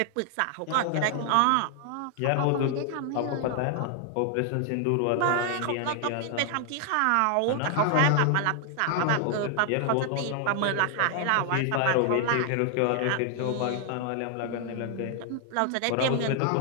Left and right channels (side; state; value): both; different; correlation 0.00